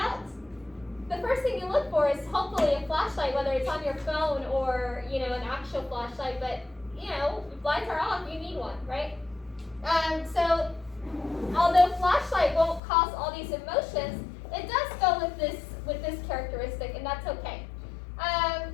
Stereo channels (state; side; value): drops out; right; at 12.8 s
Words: the first thing you look for is hopefully a flashlight, whether it's on your phone or, an actual flashlight. But, if lights are off, you need one, right? So, although flashlight won't cause all these emotions, it does go with this characteristic, and that's okay.